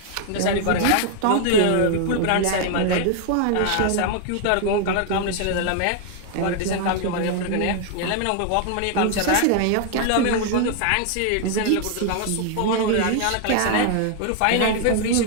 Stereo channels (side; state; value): both; different; correlation 0.00